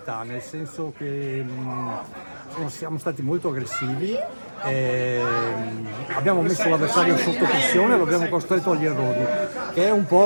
nel senso che siamo stati molto aggressivi, abbiamo messo l'avversario sotto pressione, lo abbiamo costretto agli errori, che è un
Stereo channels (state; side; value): inverted; both; correlation -1.00